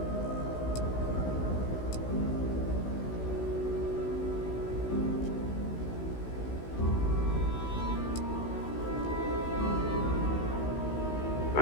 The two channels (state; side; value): late; right; 16 ms